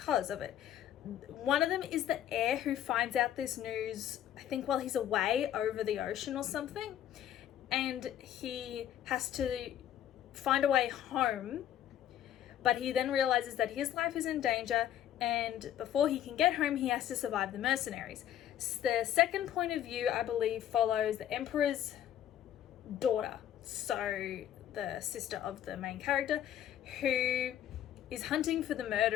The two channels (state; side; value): quieter; right; 11.0 dB